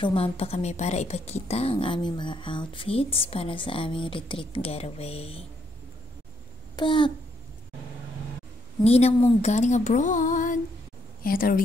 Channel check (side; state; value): both; normal; correlation 0.74